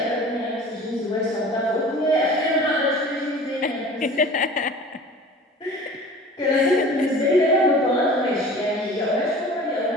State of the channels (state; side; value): normal; both; correlation 0.42